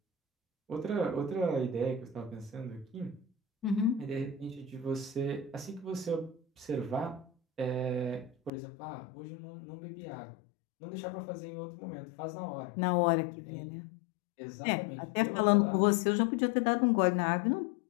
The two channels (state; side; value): drops out; right; at 8.5 s